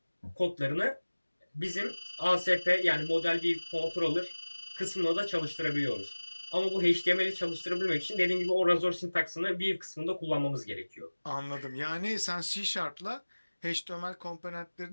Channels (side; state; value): both; inverted; correlation -1.00